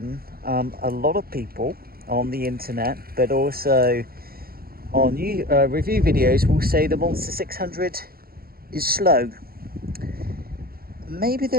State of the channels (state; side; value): late; left; 0.44 ms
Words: a lot of people on the internet, but also on review videos, will say the Monster 600 is slow. Maybe